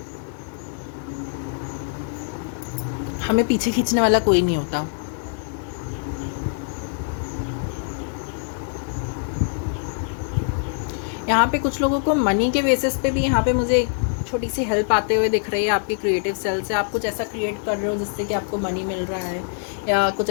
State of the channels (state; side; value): silent; right; 63 dB below the other